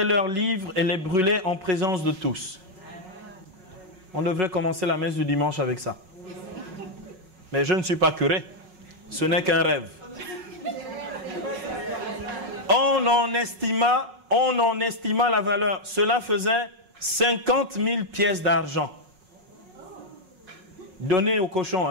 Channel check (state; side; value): late; left; 5.4 ms